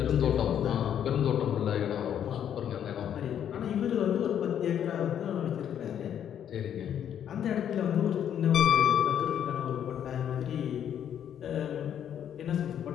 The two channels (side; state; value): right; quieter; 9.5 dB